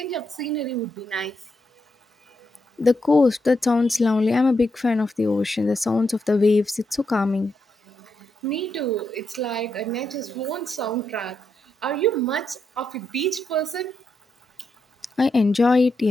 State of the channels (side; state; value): both; normal; correlation 0.83